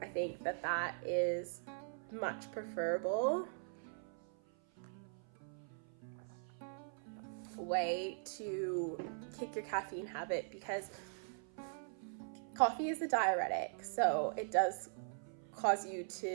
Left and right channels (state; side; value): silent; left; 50 dB below the other